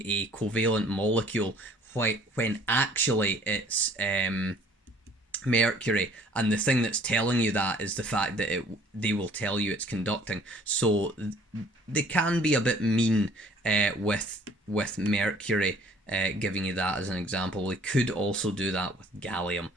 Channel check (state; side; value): normal; both; correlation 0.56